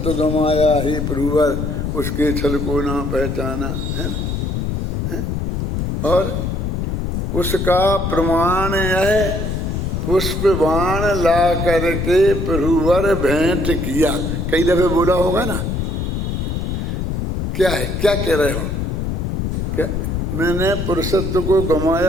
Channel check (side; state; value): left; noise; rumble, 2 dB below the sound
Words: गमाया ही प्रभुवर, उसके छल को ना पहचाना, है। और उसका प्रमाण है पुष्प बाण ला करके प्रभुवर भेंट किया। कई दफे बोला होगा ना, क्या है, क्या कह रहे हो? क्या मैंने पुरुषत्व को